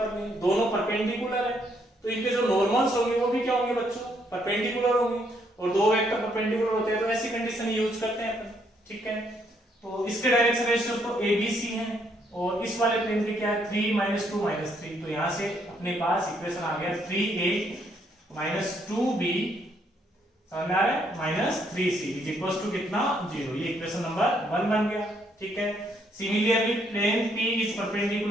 ने, दोनों परपेंडिकुलर है तो इनके जो नॉर्मल्स होंगे वो भी क्या होंगे बच्चों, परपेंडिकुलर होंगे। और दो वेक्टर परपेंडिकुलर होते हैं तो ऐसी कंडीशन यूज करते हैं अपन, ठीक है। तो इसके डायरेक्शन रेशियो तो ABC हैं और इस वाले प्लेन के क्या है 3 2 3। तो यहां से अपने पास इक्वेशन आ गया 3a 2b समझ में आ रहा है -3c इज इक्वल टू कितना 0। ये इक्वेशन नंबर 1 बन गया, ठीक है। Similarly plane P is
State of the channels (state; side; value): normal; both; correlation 0.71